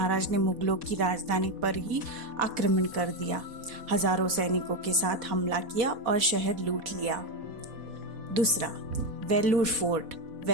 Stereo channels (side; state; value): left; late; 4.2 ms